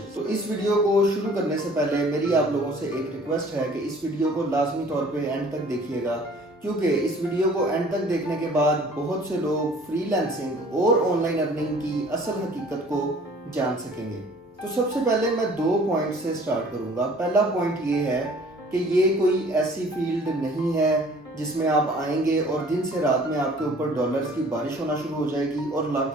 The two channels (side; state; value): both; normal; correlation 0.52